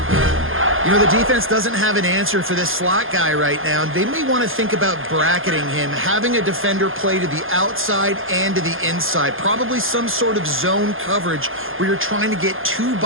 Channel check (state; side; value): late; left; 0.59 ms